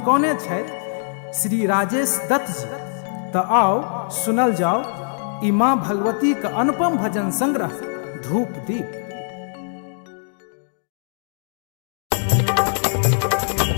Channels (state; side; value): silent; right; 64 dB below the other